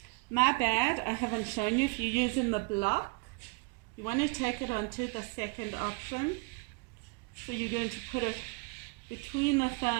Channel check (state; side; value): quieter; left; 29.3 dB